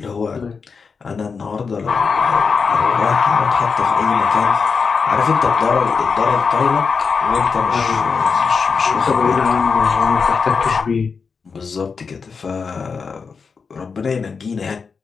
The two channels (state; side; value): quieter; right; 5.3 dB